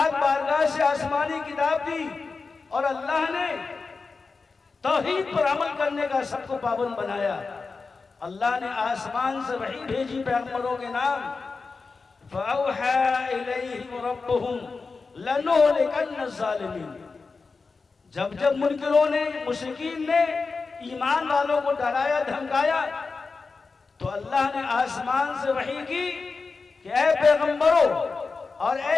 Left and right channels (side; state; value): right; quieter; 4.4 dB